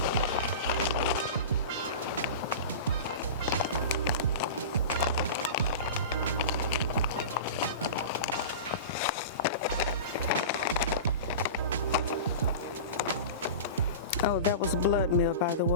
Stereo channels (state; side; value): inverted; both; correlation -0.30